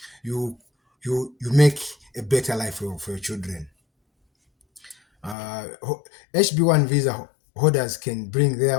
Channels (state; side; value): drops out; right; at 5.4 s